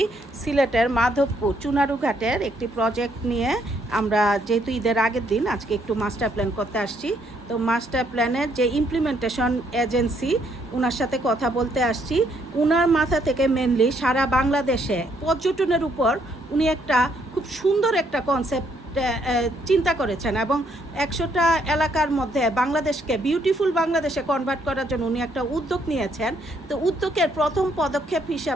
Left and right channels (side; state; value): both; normal; correlation 0.71